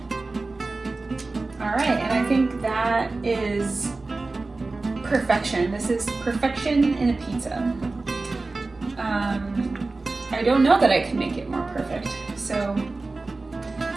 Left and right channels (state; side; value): quieter; left; 3.5 dB